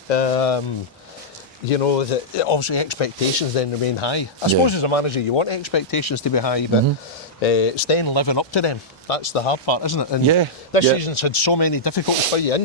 You know, obviously expectations then remain high. I suppose as a manager you want expectations to be high, but it's then living up to them. That's the hard part, isn't it? And this season's had so many difficulties for you.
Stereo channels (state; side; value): normal; both; correlation -0.10